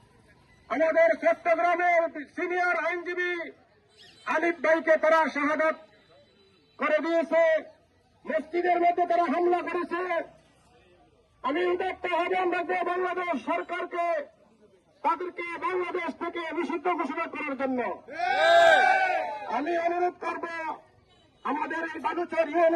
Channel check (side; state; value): both; identical; correlation 1.00